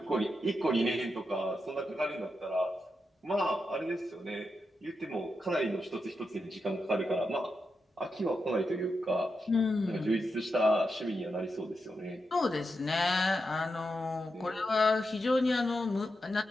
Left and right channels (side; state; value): both; normal; correlation 0.87